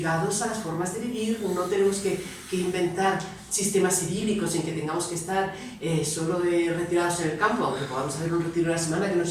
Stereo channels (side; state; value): both; identical; correlation 1.00